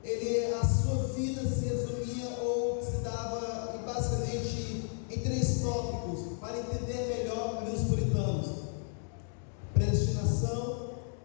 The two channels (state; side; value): silent; right; 56 dB below the other